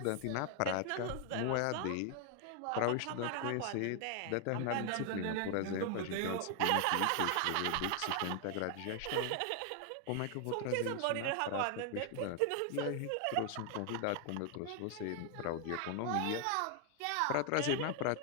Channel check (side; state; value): both; different; correlation 0.00